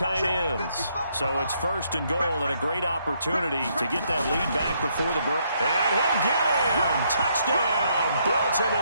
ends. So it's 1st and goal and a great opportunity to get that lead back before the break. And he'll get in. Touchdown,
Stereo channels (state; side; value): inverted; both; correlation -0.73